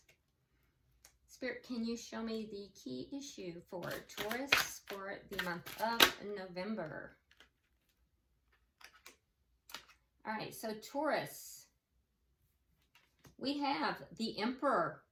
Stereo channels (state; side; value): identical; both; correlation 1.00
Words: Spirit, can you show me the key issue for Taurus for the month of November? All right, so Taurus, we have the Emperor.